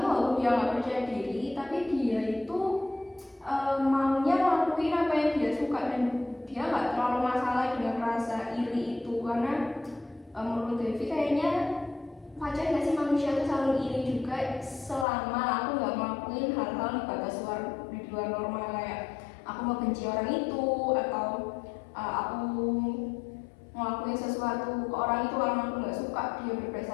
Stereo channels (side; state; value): right; drops out; at 15.1 s